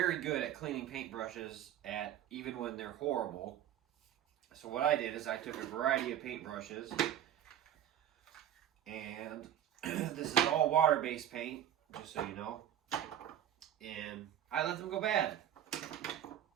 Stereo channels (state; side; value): quieter; left; 10.8 dB